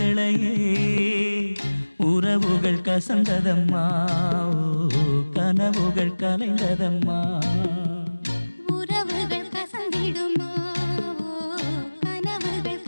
உறவுகள் கசந்ததம்மா கனவுகள் கலைந்ததம்மா. உறவுகள் கசந்திடுமா கனவுகள்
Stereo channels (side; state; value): both; inverted; correlation -1.00